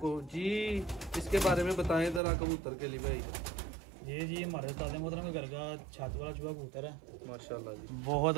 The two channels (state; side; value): drops out; left; at 2.2 s